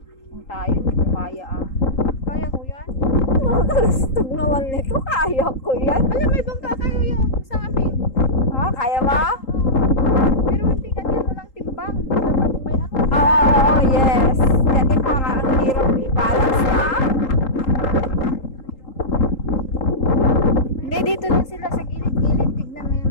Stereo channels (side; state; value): right; late; 3.8 ms